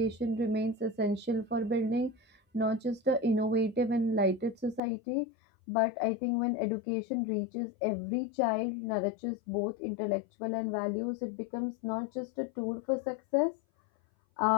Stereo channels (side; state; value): right; drops out; at 4.8 s